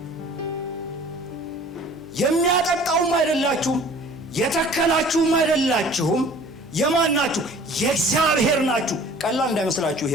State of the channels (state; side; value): normal; both; correlation 0.49